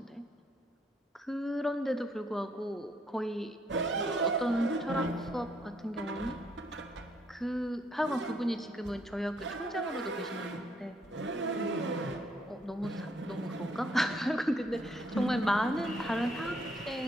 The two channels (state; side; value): normal; both; correlation 0.70